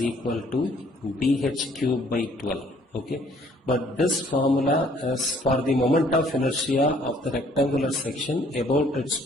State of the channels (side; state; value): both; normal; correlation 0.61